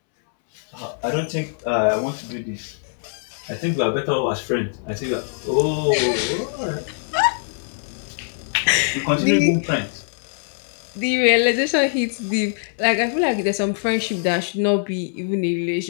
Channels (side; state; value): right; silent; 64 dB below the other